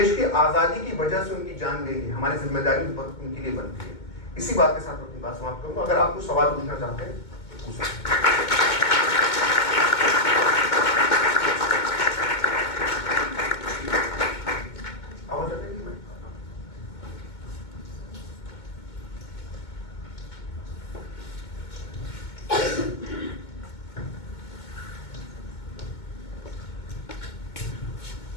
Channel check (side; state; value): right; late; 2.2 ms